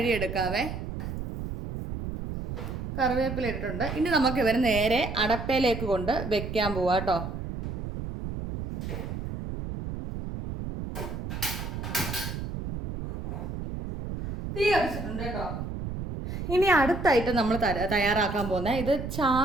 കറിവേപ്പില ഇട്ടിട്ടുണ്ട്. ഇനി നമുക്ക് ഇവരെ നേരെ അടപ്പയിലേക്ക് കൊണ്ട് വെക്കാൻ പോവാം കേട്ടോ. തീ കത്തിച്ചിട്ടുണ്ട് കേട്ടോ. ഇനി അടുത്തായിട്ട് നമ്മൾ തയ്യാറാക്കാൻ പോകുന്നത് ഇത്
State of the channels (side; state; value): right; noise; rumble, 6 dB below the sound